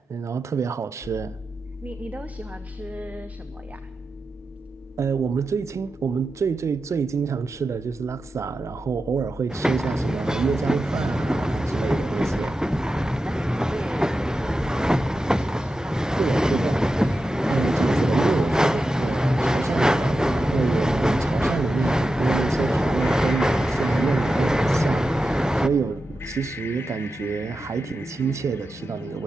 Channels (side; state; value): both; normal; correlation 0.91